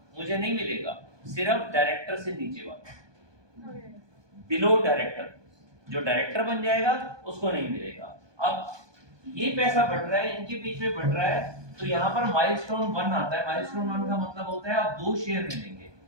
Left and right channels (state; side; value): late; left; 1.2 ms